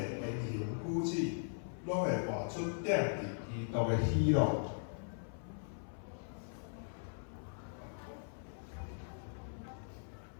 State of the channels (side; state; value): right; silent; 51 dB below the other